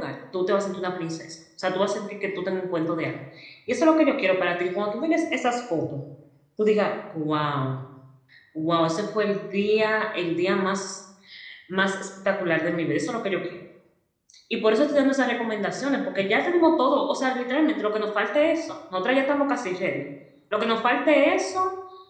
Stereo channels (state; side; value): identical; both; correlation 1.00